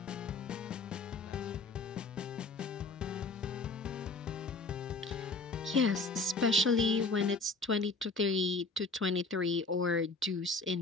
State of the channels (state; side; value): quieter; right; 3.6 dB